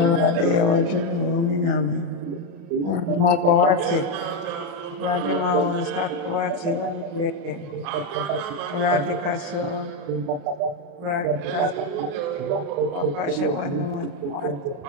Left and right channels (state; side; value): late; left; 35 ms